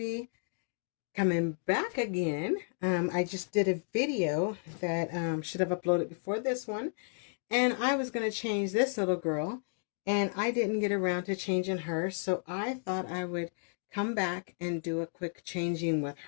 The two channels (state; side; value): silent; right; digital silence